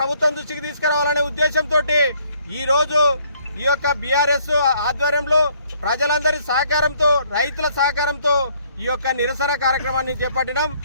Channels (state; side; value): inverted; both; correlation -0.64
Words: దృష్టికి తీసుకురావాలనే ఉద్దేశంతో ఈరోజు ఈ యొక్క బీఆర్ఎస్ ఆధ్వర్యంలో ప్రజలందరి సహకారంతో, రైతుల సహకారంతో ఈ యొక్క నిరసన కార్యక్రమాన్ని చేపట్టినాం.